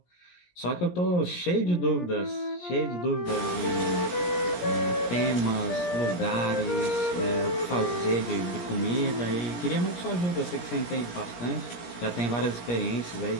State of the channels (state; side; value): late; right; 17 ms